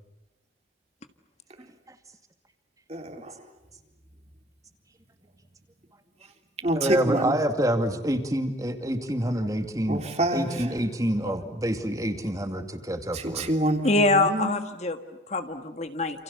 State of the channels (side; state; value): both; normal; correlation 0.50